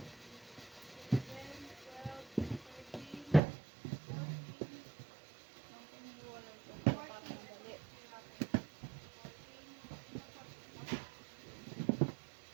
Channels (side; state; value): left; drops out; at 3.4 s